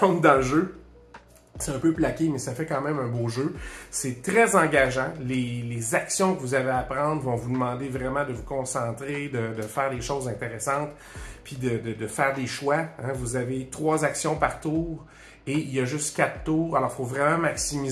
dans le jeu. C'est un peu plaqué, mais ça fait quand même un beau jeu. C'est très engageant. Les actions que vous avez à prendre vont vous demander vraiment de vous concentrer, de faire des choses intéressantes, puis de faire des choix. Hein. Vous avez 3 actions par tour et il y a juste 4 tours. Alors, il faut vraiment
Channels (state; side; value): identical; both; correlation 1.00